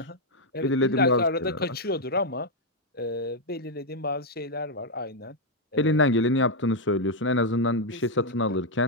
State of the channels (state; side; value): normal; both; correlation -0.01